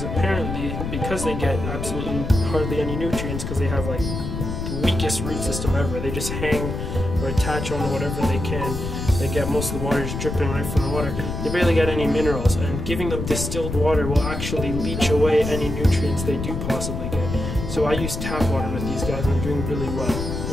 apparently, because they get absolutely hardly any nutrients, because they have like the weakest root system ever, they just hang or attach on whatever they can. They get most of the water just dripping right from the water. They barely get any minerals, and giving them distilled water will actually leach away any nutrients they do possibly get. So I use tap water with these guys, and they're doing really well.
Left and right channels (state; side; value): noise; left; rumble, 4 dB below the sound